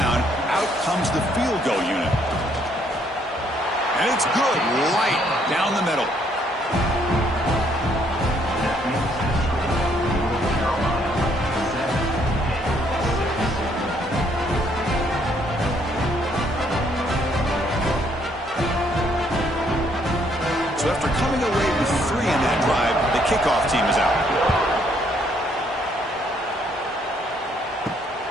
out comes the field goal unit. And it's good, right down the middle. So after coming away with 3 in that drive, the kickoff team is out.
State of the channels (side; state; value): both; normal; correlation 0.68